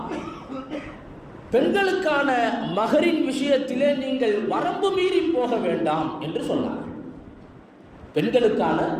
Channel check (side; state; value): both; identical; correlation 1.00